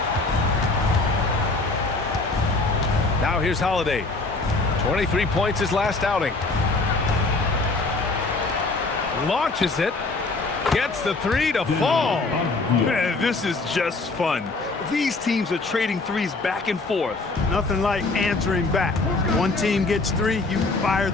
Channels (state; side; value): quieter; right; 3.5 dB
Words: Now here's Holiday. 23 points his last outing. Launches it. Gets the 3 to fall. Man, this is just fun. These teams are trading threes back and forth. Nothing like answering back. One team gets 3, you fire